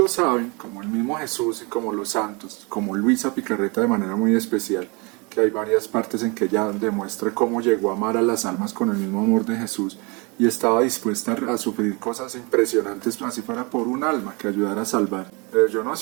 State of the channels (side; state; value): left; quieter; 29.4 dB